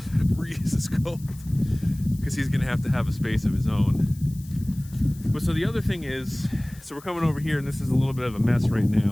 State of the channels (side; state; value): left; noise; hiss, 22 dB below the sound